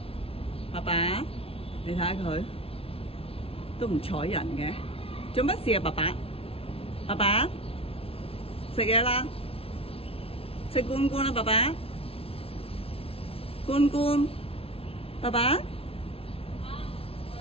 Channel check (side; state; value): right; late; 0.27 ms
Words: 爸爸，你睇下佢都唔睬人嘅，做乜事啊？爸爸，爸爸食嘢啦，食罐罐啦，爸爸，罐罐，爸爸，